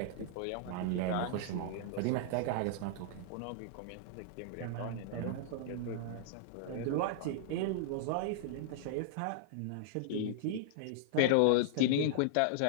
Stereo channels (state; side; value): different; both; correlation -0.01